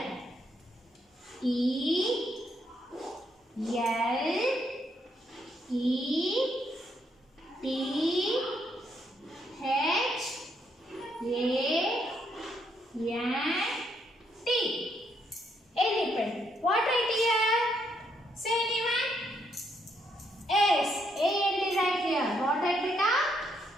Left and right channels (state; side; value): normal; both; correlation 0.75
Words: E L E T H A N T elephant. What right here? Say anyone? S. A and D right here. What right beta?